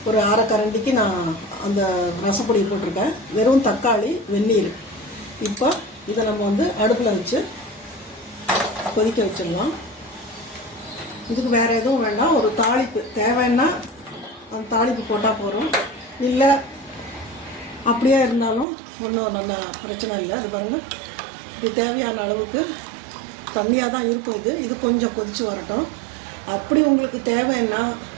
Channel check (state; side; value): drops out; left; at 18.7 s